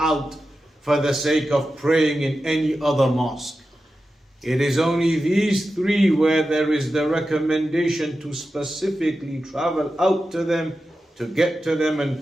for the sake of praying in any other mosque. It is only these three where there is the recommendation to specifically travel out to them, to get to them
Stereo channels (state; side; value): normal; both; correlation 0.92